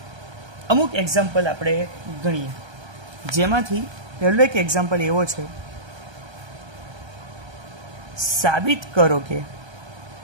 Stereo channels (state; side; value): late; left; 1.3 ms